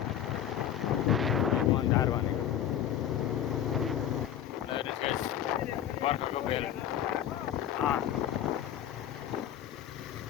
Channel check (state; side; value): quieter; right; 10.5 dB